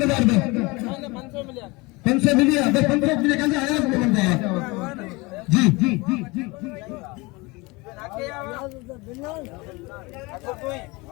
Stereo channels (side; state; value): right; quieter; 24.8 dB